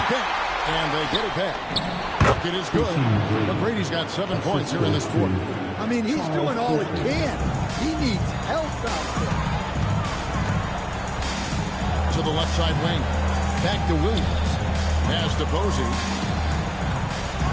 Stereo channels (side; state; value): both; identical; correlation 1.00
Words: back. And they get it back. It is good. McGrady's got 7 points here in this quarter. I mean, he's doing all he can. He needs help out there. To the left side wing. Back to Williams. Pass to Posey.